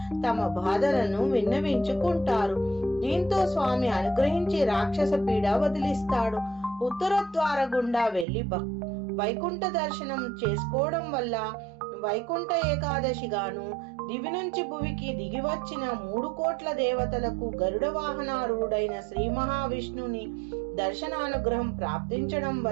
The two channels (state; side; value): drops out; left; at 8.2 s